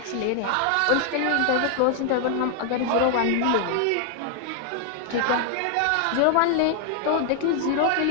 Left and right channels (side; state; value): both; different; correlation 0.00